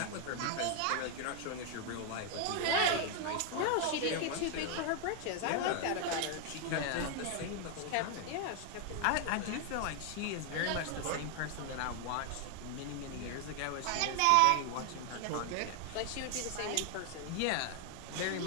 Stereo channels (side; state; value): both; different; correlation 0.00